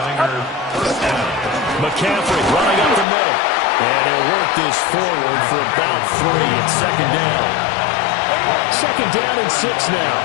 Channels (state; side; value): drops out; right; at 3.1 s